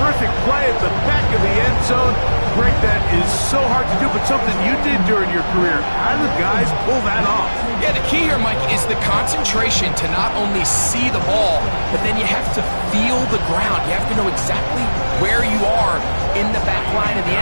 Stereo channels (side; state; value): both; inverted; correlation -1.00